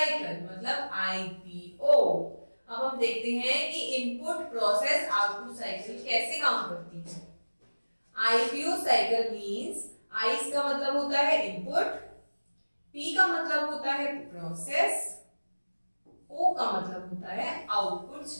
मतलब आईपीओ। अब हम देखते हैं कि इनपुट प्रोसेस आउटपुट साइकिल कैसे काम करती है। आईपीओ साइकिल मींस आई का मतलब होता है इनपुट, पी का मतलब होता है प्रोसेस, ओ का मतलब होता है output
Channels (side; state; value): both; inverted; correlation -1.00